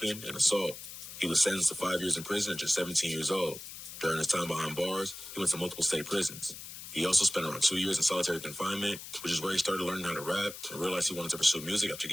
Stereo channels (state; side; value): noise; left; hiss, 12 dB below the sound